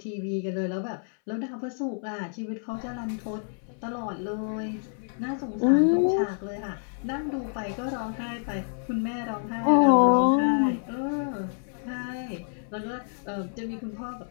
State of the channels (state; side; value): silent; right; 59 dB below the other